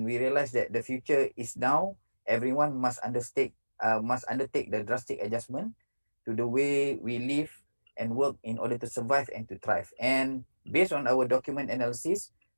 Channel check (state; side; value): inverted; both; correlation -1.00